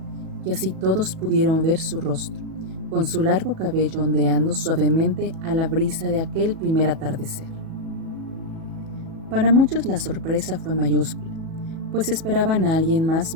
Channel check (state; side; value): late; left; 37 ms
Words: y así todos pudieron ver su rostro, con su largo cabello ondeando suavemente a la brisa de aquel primer atardecer. Para muchos la sorpresa fue mayúscula, pues esperaban a alguien más